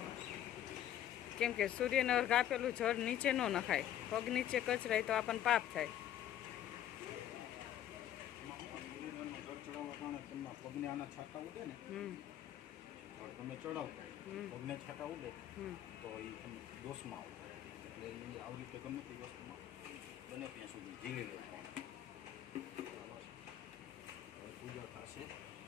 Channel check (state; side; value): quieter; right; 11.4 dB